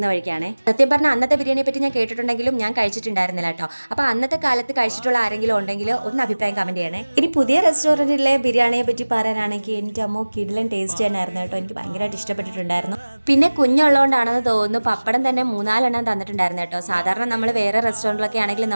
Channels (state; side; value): inverted; both; correlation -1.00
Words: വഴിക്കാണ്. സത്യം പറഞ്ഞാൽ അന്നത്തെ ബിരിയാണിയെ പറ്റി ഞാൻ കേട്ടിട്ടുണ്ടെങ്കിലും ഞാൻ കഴിച്ചിട്ടുണ്ടായിരുന്നില്ല കേട്ടോ. അപ്പോൾ അന്നത്തെ കാലത്ത് കഴിച്ചിട്ടുള്ള ആരെങ്കിലും ഉണ്ടെങ്കിൽ ഒന്ന് അഭിപ്രായം കമൻറ്റ് ചെയ്യണേ. ഇനി പുതിയ റെസ്റ്റോറൻറ്റിലെ ബിരിയാണിയെ പറ്റി പറയാനാണെങ്കിൽ എൻ്റെ അമ്മോ കിടിലൻ ടേസ്റ്റ് തന്നെയായിരുന്നു കേട്ടോ. എനിക്ക് ഭയങ്കരമായിട്ട് ഇഷ്ടപ്പെട്ടിട്ടുണ്ടായിരുന്നു. പിന്നെ കുഞ്ഞുള്ളതുകൊണ്ടാണെന്ന് തോന്നുന്നു പപ്പടം തന്നെ 3-4 തന്നിട്ടുണ്ടായിരുന്നു കേട്ടോ. സാധാരണ നമ്മൾ വേറെ റെസ്റ്റോറൻറ്റിലൊക്കെ ആണെങ്കിൽ